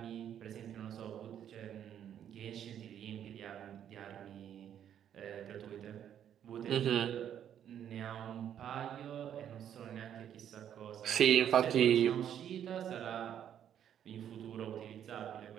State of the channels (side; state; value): left; quieter; 9.7 dB